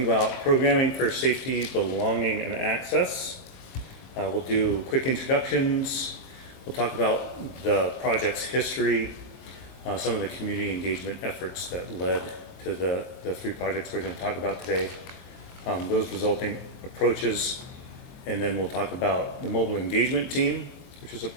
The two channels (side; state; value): right; late; 23 ms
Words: about programming for safety, belonging, and access. We'll do quick introductions. We'll talk about the project's history, some of the community engagement efforts that led to the three projects we're going to talk about today, those resulting approaches, and then we'll talk about the mobile engagement team, which is a